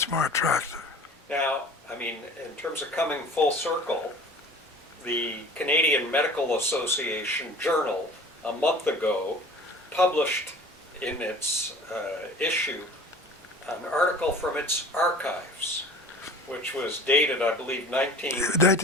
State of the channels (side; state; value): both; normal; correlation 0.43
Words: more attractive. Now, I mean, in terms of coming full circle, the Canadian Medical Association Journal a month ago published in its issue an article from its archives, which was dated, I believe,